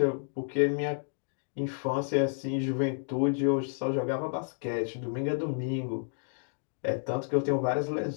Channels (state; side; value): silent; right; digital silence